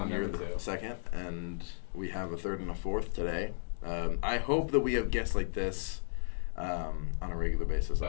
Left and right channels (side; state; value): right; silent; digital silence